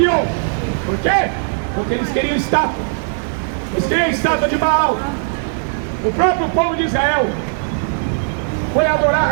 Por quê? Porque eles queriam estátua. Eles queriam estátua de Baal. O próprio povo de Israel foi adorar a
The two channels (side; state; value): left; silent; 67 dB below the other